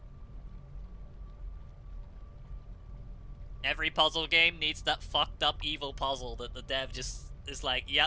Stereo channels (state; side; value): identical; both; correlation 1.00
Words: Every puzzle game needs that fucked up evil puzzle that the dev just is like,